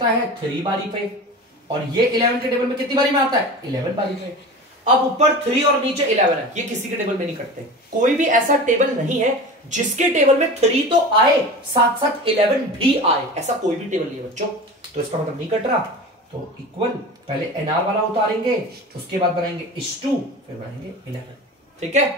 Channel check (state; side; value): normal; both; correlation 0.33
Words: है 3 बारी पे और ये 11 के टेबल में कितनी बारी में आता है, 11 बारी पे। अब ऊपर 3 और नीचे 11 है, ये किसी के टेबल में नहीं कटते। कोई भी ऐसा टेबल नहीं है जिसके टेबल में 3 तो आए साथ साथ 11 भी आए, ऐसा कोई भी टेबल नहीं है बच्चों। तो इसका मतलब नहीं कट रहा। तो इक्वल पहले एनआर वाला उतारेंगे, उसके बाद बनाएंगे इस2, फिर बनाएंगे 11। ठीक है,